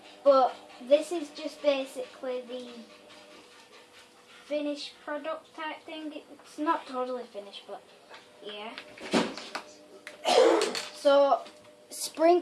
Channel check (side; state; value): both; identical; correlation 1.00